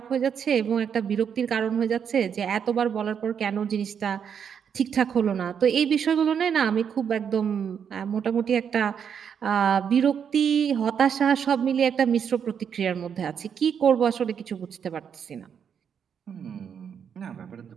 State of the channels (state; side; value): quieter; left; 7.6 dB